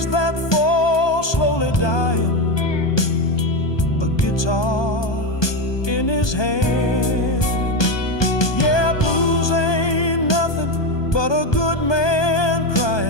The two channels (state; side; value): late; right; 1.2 ms